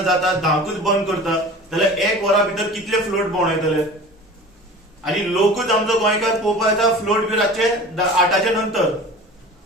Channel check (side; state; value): both; normal; correlation 0.39